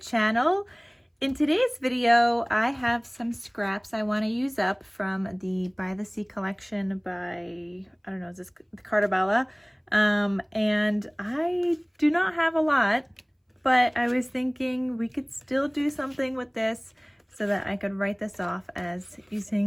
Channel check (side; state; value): both; identical; correlation 1.00